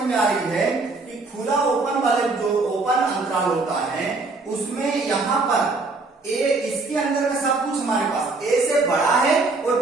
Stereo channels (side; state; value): left; quieter; 3.6 dB